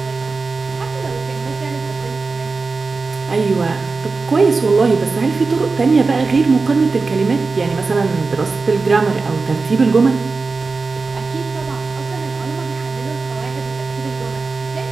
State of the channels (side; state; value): left; quieter; 4.1 dB